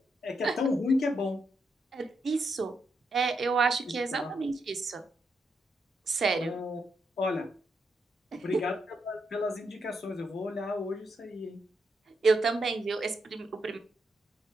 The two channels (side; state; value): both; normal; correlation 0.81